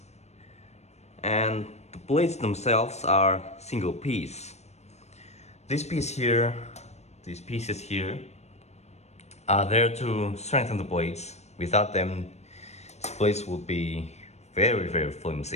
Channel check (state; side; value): late; right; 0.32 ms